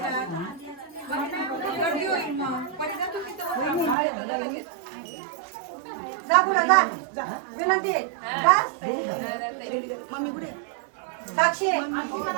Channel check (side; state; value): left; drops out; at 4.0 s